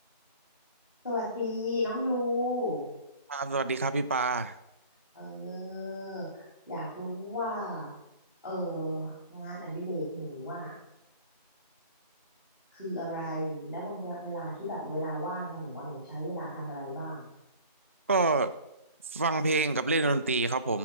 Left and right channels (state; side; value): inverted; both; correlation -0.46